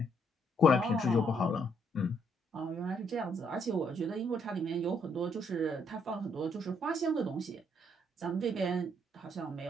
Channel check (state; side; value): normal; both; correlation 0.71